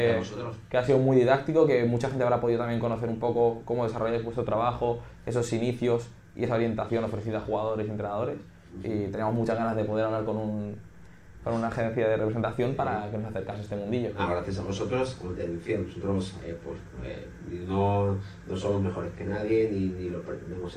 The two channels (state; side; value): identical; both; correlation 1.00